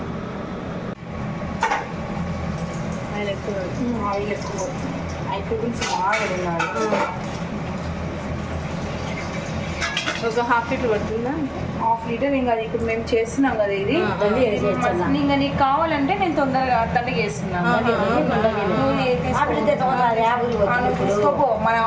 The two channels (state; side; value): identical; both; correlation 1.00